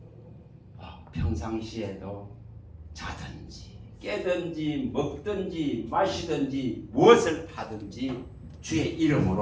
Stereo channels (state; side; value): identical; both; correlation 1.00